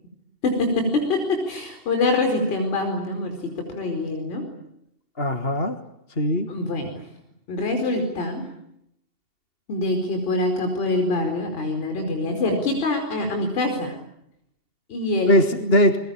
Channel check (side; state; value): right; late; 2.7 ms